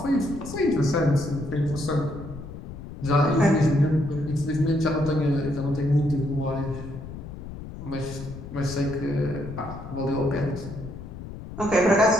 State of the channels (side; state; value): left; noise; rumble, 11 dB below the sound